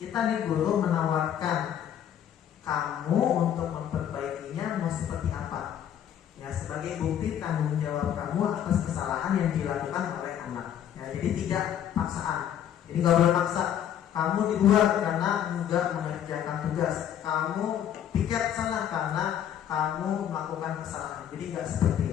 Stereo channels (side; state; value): right; quieter; 9.9 dB